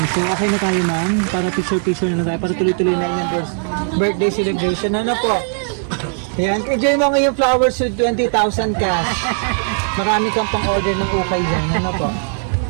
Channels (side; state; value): left; silent; digital silence